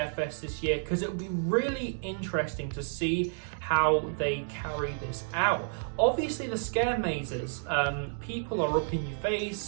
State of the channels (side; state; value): left; silent; digital silence